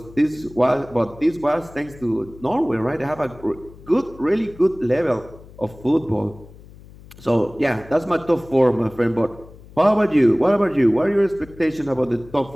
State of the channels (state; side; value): noise; left; hum, 21 dB below the sound